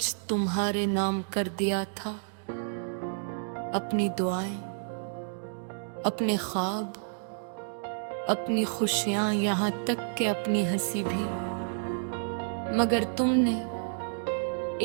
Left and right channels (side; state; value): left; silent; digital silence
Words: तुम्हारे नाम कर दिया था, अपनी दुआएं, अपने ख्वाब, अपनी खुशियां, यहाँ तक कि अपनी हंसी भी। मगर तुमने